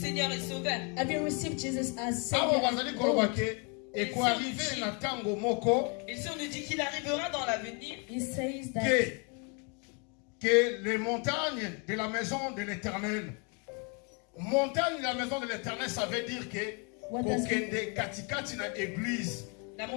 et Sauveur? have you received Jesus as Awa Savior bazali and koloba Lord? ke ekoarrive na tango moko Et si on nous dit qu'il arrivera dans l'avenir, He says that que les montagnes de la maison de l'Éternel, montagne de la maison de l'Éternel, ça veut dire que What does it- kokende katikati na église. la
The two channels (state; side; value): quieter; right; 34.0 dB